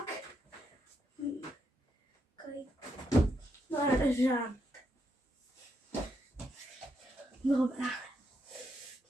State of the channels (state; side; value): normal; both; correlation 0.80